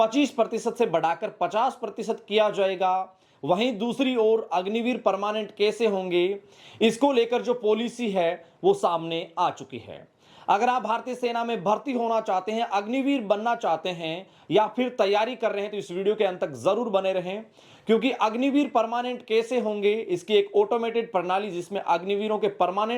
से बढ़ाकर 50% किया जाएगा, वहीं दूसरी ओर अग्निवीर परमानेंट कैसे होंगे, इसको लेकर जो पॉलिसी है वो सामने आ चुकी है। अगर आप भारतीय सेना में भर्ती होना चाहते हैं, अग्निवीर बनना चाहते हैं या फिर तैयारी कर रहे हैं तो इस वीडियो के अंत तक जरूर बने रहें, क्योंकि अग्निवीर परमानेंट कैसे होंगे इसकी एक ऑटोमेटेड प्रणाली जिसमें अग्निवीरों के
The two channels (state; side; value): identical; both; correlation 1.00